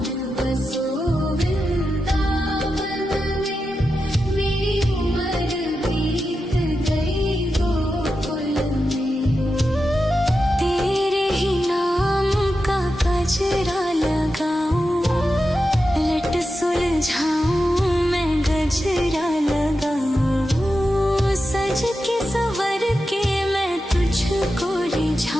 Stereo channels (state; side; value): normal; both; correlation 0.90